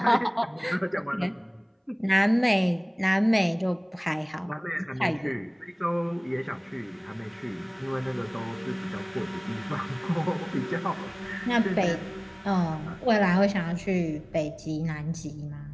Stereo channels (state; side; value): identical; both; correlation 1.00